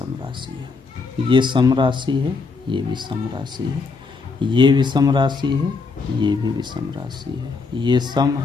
राशि है। ये सम राशि है, ये विषम राशि है। ये विषम राशि है, ये भी विषम राशि है। ये सम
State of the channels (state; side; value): quieter; right; 4.4 dB